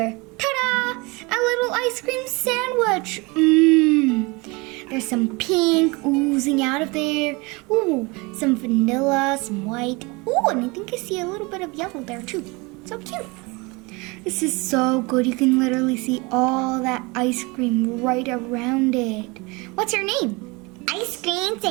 Ta-da! A little ice cream sandwich. There's some pink oozing out of there. Ooh, some vanilla, some white. Ooh, and I think I see a little bit of yellow there too. So cute. This is so good. You can literally see all that ice cream right around it. What's your name? Ice cream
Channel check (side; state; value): left; quieter; 26.3 dB